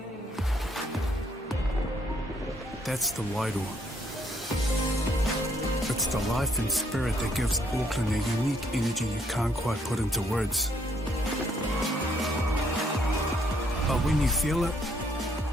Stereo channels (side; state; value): both; normal; correlation 0.70